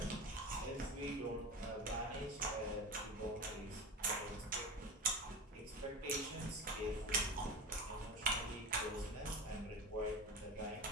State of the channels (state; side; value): normal; both; correlation 0.26